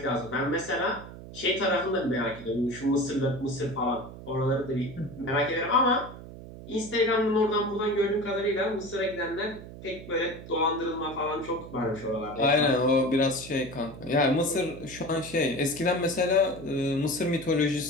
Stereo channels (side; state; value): right; noise; hum, 14 dB below the sound